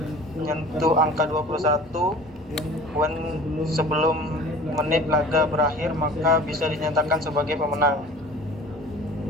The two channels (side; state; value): both; normal; correlation 0.43